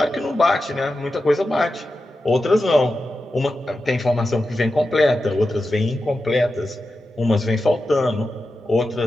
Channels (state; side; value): normal; both; correlation 0.91